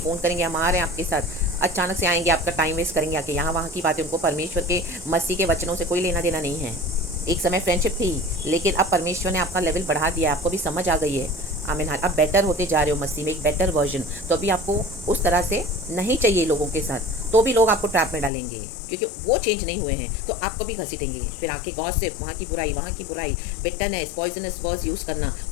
करेंगे, हम आ रहे हैं आपके साथ, अचानक से आएंगे, आपका टाइम वेस्ट करेंगे आके यहाँ वहाँ की बातें। उनको परमेश्वर के मसीह के वचनों से कोई लेना देना नहीं है। एक समय फ्रेंडशिप थी, लेकिन अब परमेश्वर ने आपका लेवल बढ़ा दिया, आपको भी समझ आ गई है। आमीन। अब बेटर होते जा रहे हो मसीह में, एक बेटर वर्जन। तो अभी आपको उस तरह से नहीं चाहिए लोगों के साथ, तो भी लोग आपको ट्रैप में डालेंगे क्योंकि वो चेंज नहीं हुए हैं, तो आपको भी घसीटेंगे। फिर आके गॉसिप, वहाँ की बुराई, वहाँ की बुराई, बिटरनेस, पॉइजनस वर्ड्स यूज़ करना,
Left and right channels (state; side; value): drops out; right; at 18.3 s